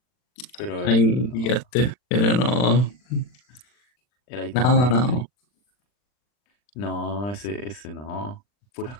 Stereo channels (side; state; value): right; late; 40 ms